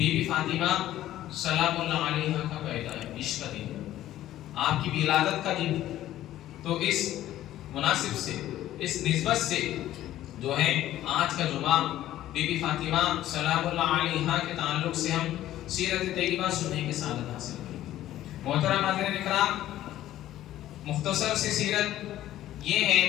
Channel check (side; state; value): right; quieter; 13.5 dB